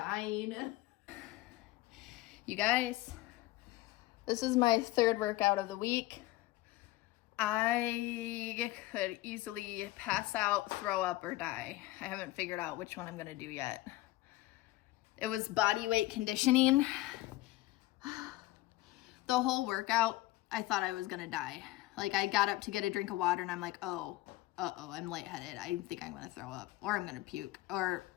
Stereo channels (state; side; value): quieter; right; 17.9 dB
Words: You guys, this is my third workout of the week. I could easily pass out, throw up, or die. I haven't figured out which one I'm gonna do yet. It was body weight conditioning. The whole workout, I thought I was gonna die. Like, I got up to get a drink of water and I'm like, oh, I'm lightheaded. I think I'm gonna throw up or I'm gonna puke or